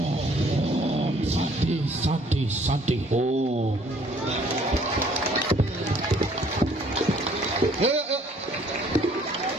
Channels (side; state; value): both; normal; correlation 0.59